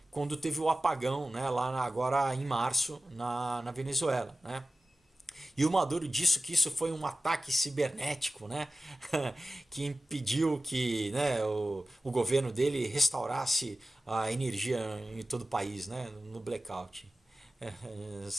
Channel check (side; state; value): both; normal; correlation 0.96